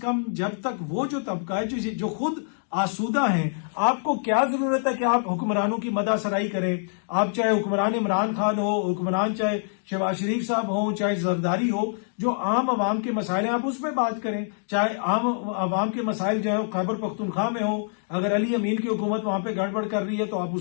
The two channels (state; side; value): silent; right; digital silence